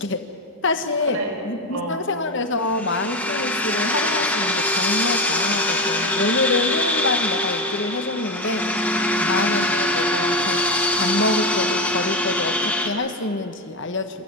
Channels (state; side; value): normal; both; correlation 0.15